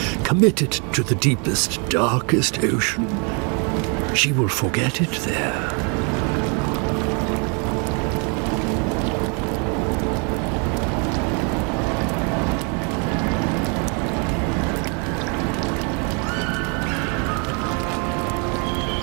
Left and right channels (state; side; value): quieter; left; 35.5 dB